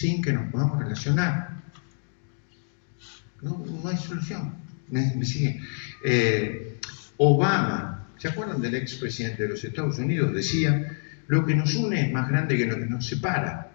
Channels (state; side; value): silent; right; digital silence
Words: que nos podamos relacionar. No hay solución. ¿Me siguen? Obama, ¿se acuerdan del expresidente de los Estados Unidos? Decía, lo que nos une es más grande que lo que nos separa.